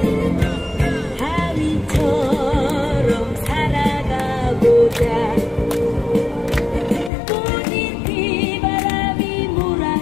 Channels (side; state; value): right; drops out; at 7.1 s